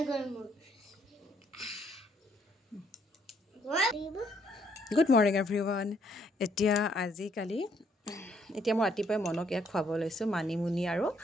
গেল মোৰ গুড মৰ্ণিং এভৰিৱান এতিয়া আজিকালি এতিয়া মই ৰাতিপুৱাই মনক ইয়াক খুৱাব লৈছোঁ মানিমুনি আৰু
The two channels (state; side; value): normal; both; correlation 0.69